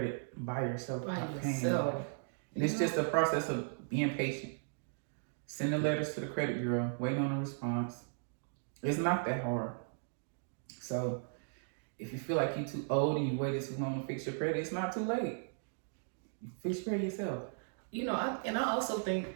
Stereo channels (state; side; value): silent; left; digital silence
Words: by yourself. And it's just a process of being patient. Sending letters to the credit bureau, waiting on a response. It's not that hard. So if you feel like you're too old and you waited too long to fix your credit, it's not too late. You fix your credit yourself. You know, I also think